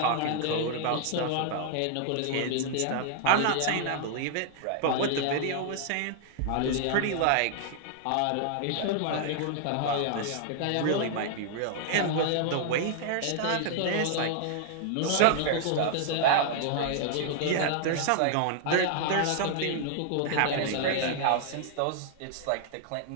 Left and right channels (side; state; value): both; different; correlation -0.01